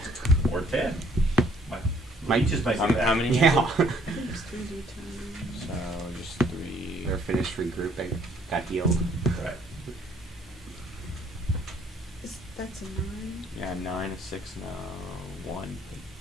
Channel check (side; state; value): both; normal; correlation 0.63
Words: or 10. Might just might do that. How many? Yeah. I think it's 3D times. So just 3. They're finished regrouping. Got healed. Right. That's a 9. Yeah, 9, a 6, no, 1.